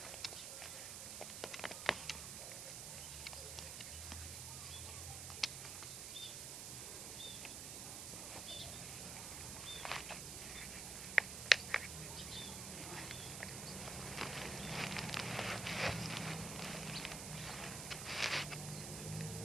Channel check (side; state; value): right; noise; hiss, 4 dB below the sound